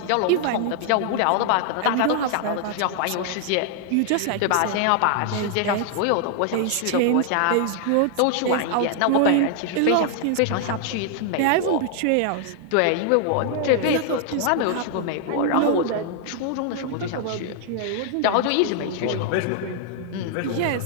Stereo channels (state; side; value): different; both; correlation 0.00